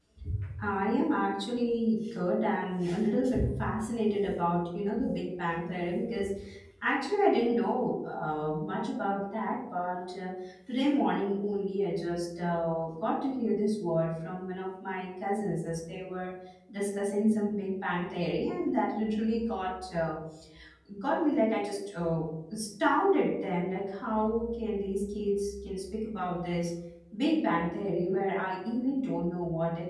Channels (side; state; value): both; identical; correlation 1.00